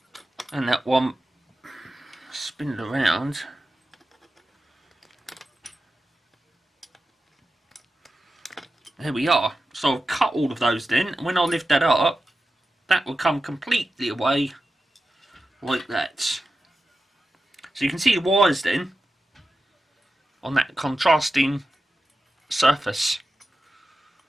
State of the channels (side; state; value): both; normal; correlation 0.92